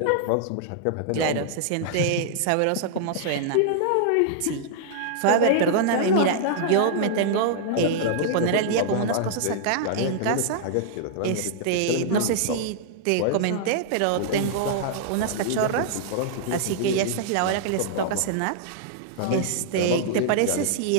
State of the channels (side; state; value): both; different; correlation -0.01